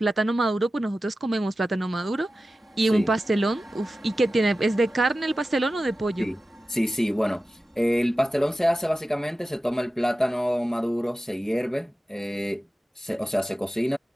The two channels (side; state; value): both; normal; correlation 0.94